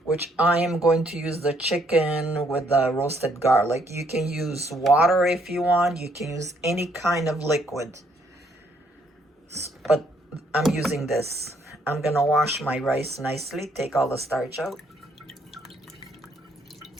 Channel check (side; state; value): both; normal; correlation 0.69